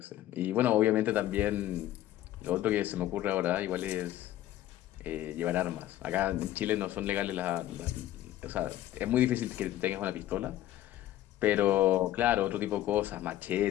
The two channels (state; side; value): quieter; right; 13.5 dB